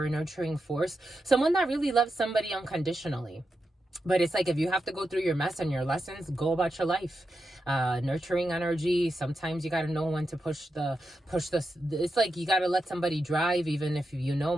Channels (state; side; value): normal; both; correlation 0.88